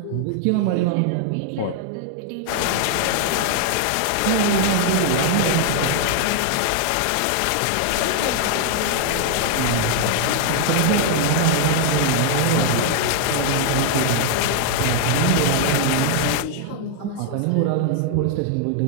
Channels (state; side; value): different; both; correlation 0.00